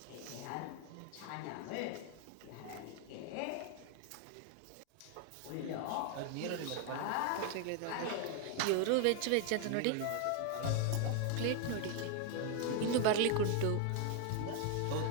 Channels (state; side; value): different; both; correlation 0.00